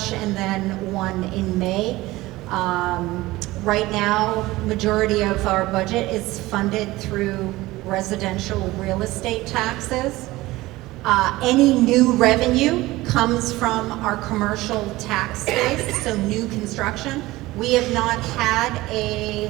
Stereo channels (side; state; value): left; quieter; 18.8 dB